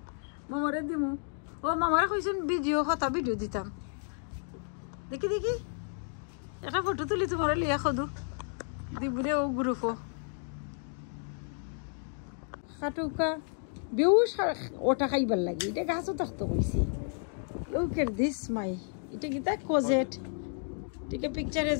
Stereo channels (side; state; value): right; silent; 57 dB below the other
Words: মামারে দিমু ও মামারে কইছেন ভিডিও কথা ভিডিও দিতাম দেখি দেখি একটা ফটো তুলি তোমার লিয়া খদু দিবরে ও গ্রুপও খাটুকা বেউস ওটা খাইবার লাগে এটা গাছও থাকতো কইছি লুক এট দিস মাই এটা কি তা কোজেট টিকে পিকচার